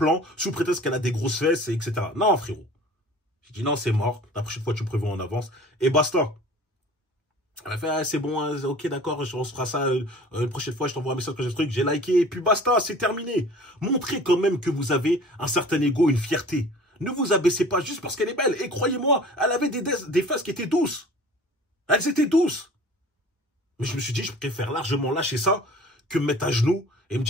sous prétexte qu'elle a des grosses fesses, etc. Non frérot. J'ai dit non c'est mort, la prochaine fois tu prévois en avance et basta. Elle a fait, ah, c'est bon, hein, ok, d'accord, on se fera ça une prochaine fois, je t'envoie un message que j'ai ce truc, j'ai liké, et puis basta, c'est terminé. Montrez quand même que vous avez un certain ego, une fierté. Ne vous abaissez pas juste parce qu'elle est belle. Et croyez-moi, elle avait des fesses qui étaient douces. Elles étaient douces. Mais je me suis dit, je préfère largement lâcher ça que me mettre à genoux et me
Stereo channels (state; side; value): normal; both; correlation 0.45